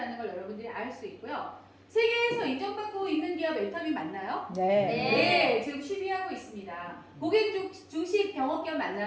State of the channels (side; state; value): both; identical; correlation 1.00